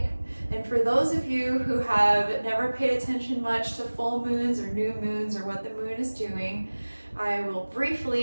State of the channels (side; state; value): both; inverted; correlation -1.00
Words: and for those of you who have never paid attention much to full moons or new moons or what the moon is doing, I will